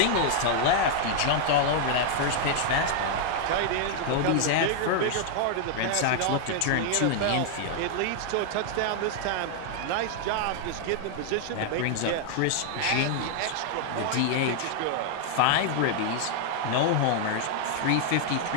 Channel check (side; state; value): both; different; correlation 0.00